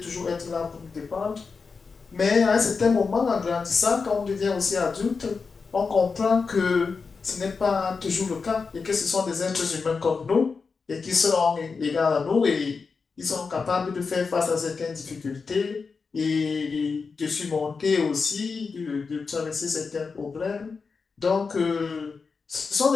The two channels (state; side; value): quieter; right; 4.9 dB